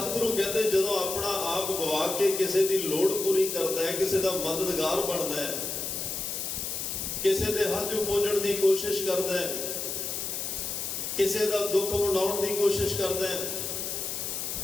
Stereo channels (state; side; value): noise; left; hiss, 3 dB below the sound